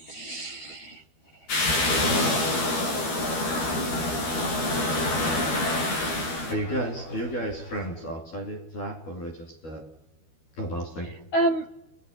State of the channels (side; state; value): right; late; 12 ms